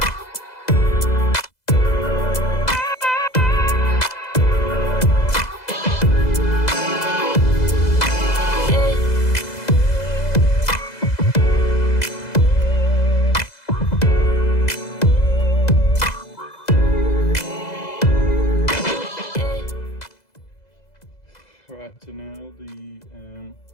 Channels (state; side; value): late; right; 2.0 ms